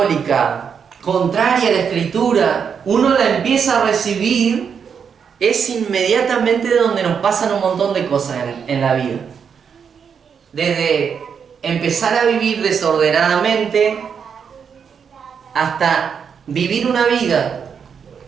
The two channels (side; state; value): left; quieter; 6.9 dB